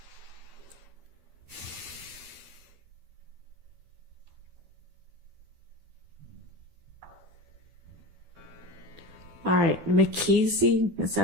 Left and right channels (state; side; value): late; left; 12 ms